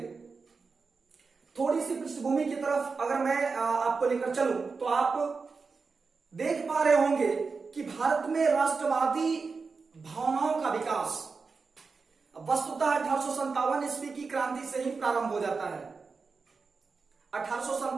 थोड़ी सी पृष्ठभूमि की तरफ अगर मैं आपको लेकर चलूं तो आप देख पा रहे होंगे कि भारत में राष्ट्रवादी भावनाओं का विकास वस्तुतः 1857 ईस्वी की क्रांति से ही प्रारंभ हो जाता है।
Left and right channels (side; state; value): left; quieter; 4.7 dB